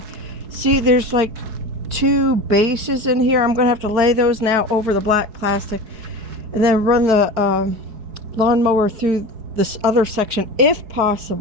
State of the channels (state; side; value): late; left; 4.6 ms